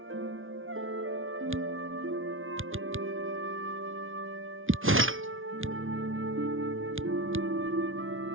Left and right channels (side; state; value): left; late; 0.58 ms